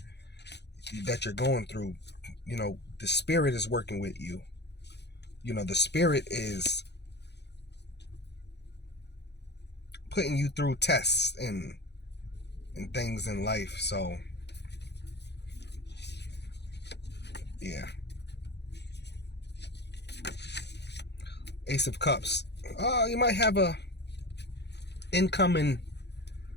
that you're going through. The spirit is working with you. The spirit is putting you through tests and things in life. So yeah. Ace of Cups. You might have a incoming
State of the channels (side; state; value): right; late; 0.50 ms